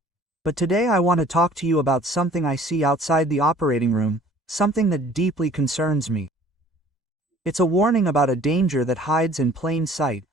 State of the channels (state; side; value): normal; both; correlation 0.52